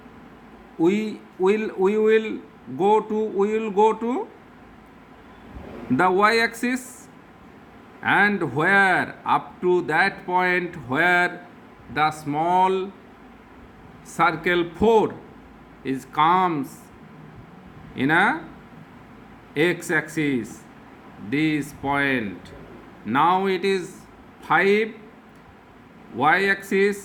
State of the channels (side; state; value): both; identical; correlation 1.00